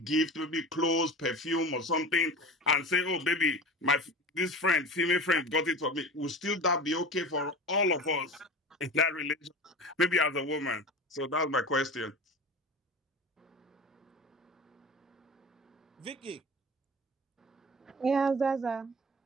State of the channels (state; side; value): normal; both; correlation 0.32